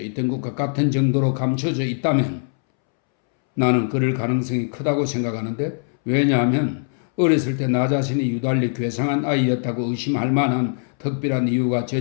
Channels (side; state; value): right; silent; 65 dB below the other